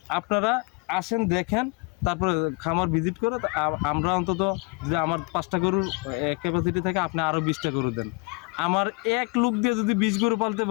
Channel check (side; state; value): right; quieter; 30.0 dB